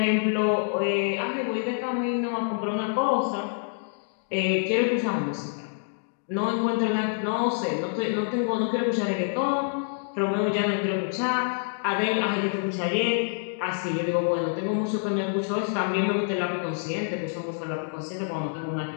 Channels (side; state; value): right; silent; digital silence